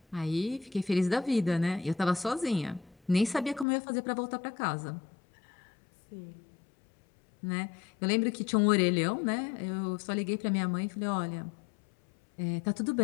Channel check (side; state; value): right; drops out; at 3.7 s